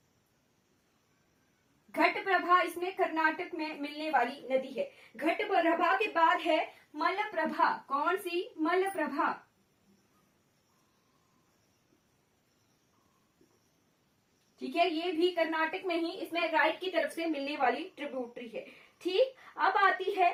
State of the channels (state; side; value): identical; both; correlation 1.00